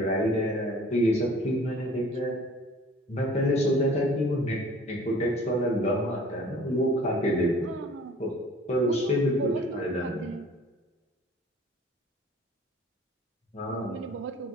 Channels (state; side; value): normal; both; correlation 0.49